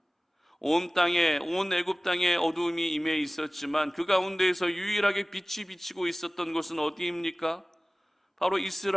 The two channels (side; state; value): both; normal; correlation 0.98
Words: 온 땅에, 온 애굽 땅에 어두움이 임해 있었지만 그 가운데에서 유일하게 빛이 비치고 있었던 곳은 어디입니까? 바로